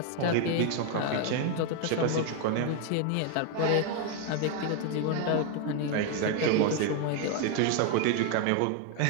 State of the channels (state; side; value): different; both; correlation 0.01